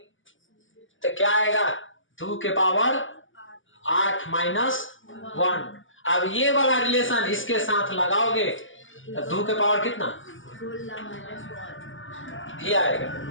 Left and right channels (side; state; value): right; late; 0.57 ms